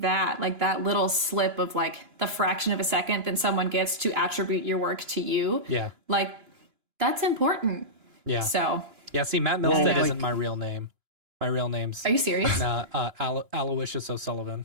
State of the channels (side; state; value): left; late; 2.9 ms